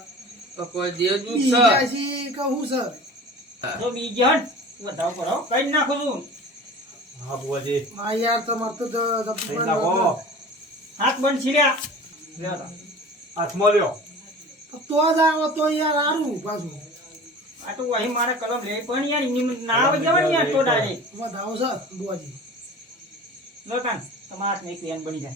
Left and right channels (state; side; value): normal; both; correlation 0.39